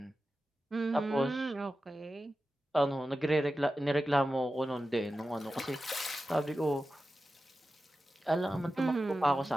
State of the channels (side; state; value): both; normal; correlation 0.93